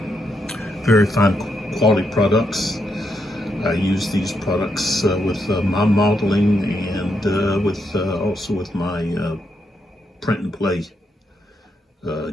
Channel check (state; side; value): normal; both; correlation 0.80